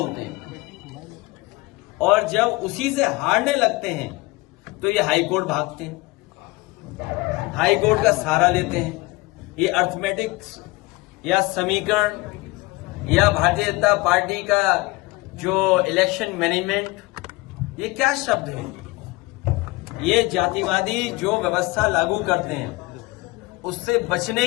हैं, और जब उसी से हारने लगते हैं तो ये हाईकोर्ट भागते हैं, हाईकोर्ट का सहारा लेते हैं। ये अर्थमेटिक्स या समीकरण या भारतीय जनता पार्टी का जो इलेक्शन मैनेजमेंट, ये क्या शब्द है? ये जातिवादी जो व्यवस्था लागू करते हैं उससे बचने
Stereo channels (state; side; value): quieter; right; 22.6 dB